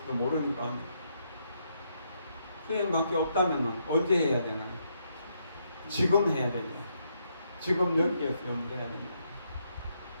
모르니까 수행밖에 없다면 언제 해야 되나요? 지금 해야 돼요. 지금 여기에서 염두해야 됩니다.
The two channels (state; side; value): inverted; both; correlation -0.77